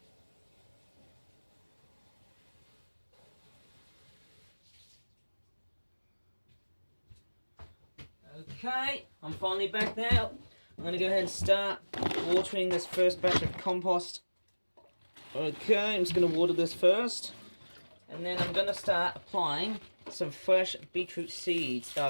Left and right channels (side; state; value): both; inverted; correlation -1.00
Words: Okay, I'm finally back now. I'm going to go ahead and start watering this first batch of compost. Okay, I'm just going to water this first. And then I'm going to start applying some fresh beetroot seeds.